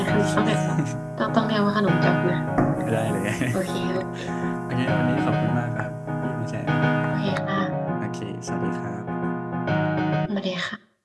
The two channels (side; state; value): both; identical; correlation 1.00